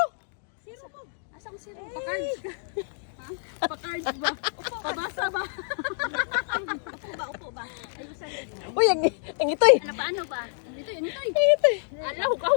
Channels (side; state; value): right; silent; digital silence